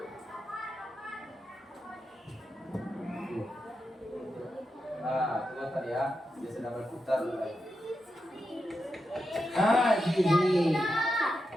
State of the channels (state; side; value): normal; both; correlation 0.87